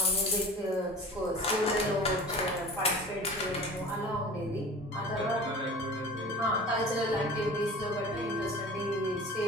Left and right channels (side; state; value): both; normal; correlation 0.40